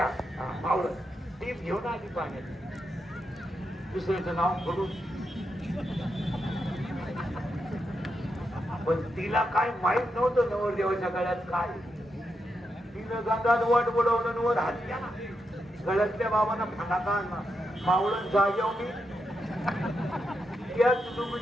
मावळत टीप घेऊन आली पाण्यात. दुसऱ्याचं नाव पडून पण तिला काय माहित नव्हतं नवरदेवाच्या गळ्यात काय. तिनं गंगात वाट बुडवलं वर हात घ्या ना गळ्यातल्या बाबांना फटाका आणला मावळण जाग्यावर मी त्याच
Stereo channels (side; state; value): both; normal; correlation 0.84